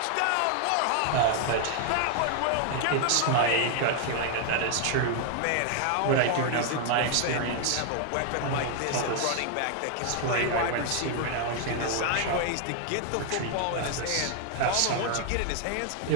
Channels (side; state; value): both; different; correlation 0.00